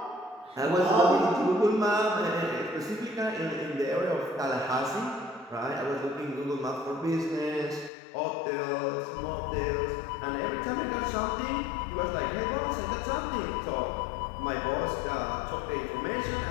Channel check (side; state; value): right; drops out; at 7.9 s